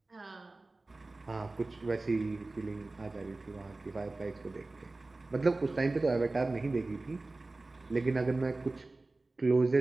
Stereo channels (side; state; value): left; quieter; 3.2 dB